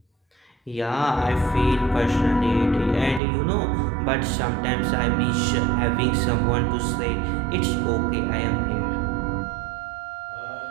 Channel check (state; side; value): drops out; left; at 3.2 s